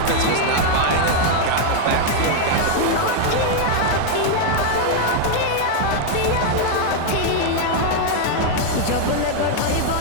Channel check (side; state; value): both; different; correlation 0.00